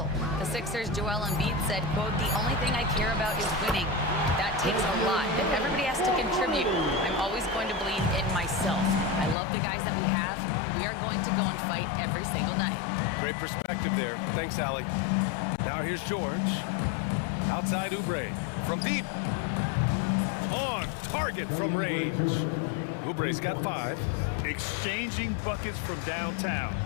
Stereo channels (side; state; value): right; drops out; at 9.3 s